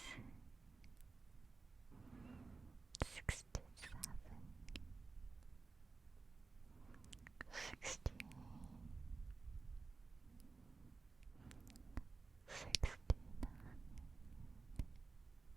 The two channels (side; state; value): left; quieter; 4.0 dB